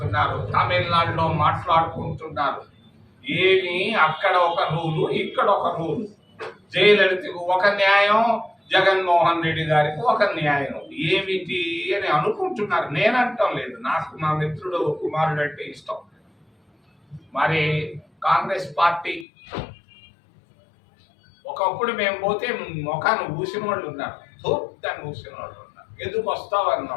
తమిళనాడులో మాట్లాడుకుంటున్నారు. ఏమి అక్కడ ఒక రూలు, ఇక్కడ ఒక రూలు. జయలలితకు ఒక న్యాయం, జగన్మోహన్ రెడ్డి గారికి ఒక న్యాయం. ఏమిటి అని అనుకుంటున్నారు. నేనంటాం లేదు, నాకు మా మిత్రుడు కుమారుడు అంటే ఇష్టం. మరి కాంగ్రెస్ పార్టీ ఒకప్పుడు మేము పోతే ముఖాన్ని ఊసిన వాళ్ళు ఉన్నారు, దాన్ని ఊసిన వాళ్ళు ఉన్నారు. ఎందుకు వస్తావు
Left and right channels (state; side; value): drops out; right; at 19.2 s